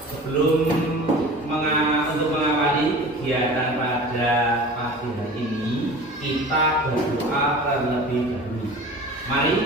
Sebelum untuk mengawali kegiatan pada pagi hari ini, kita berdoa terlebih dahulu. Mari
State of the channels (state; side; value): normal; both; correlation 0.39